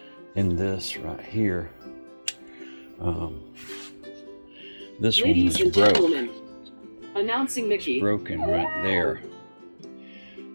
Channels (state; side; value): inverted; both; correlation -1.00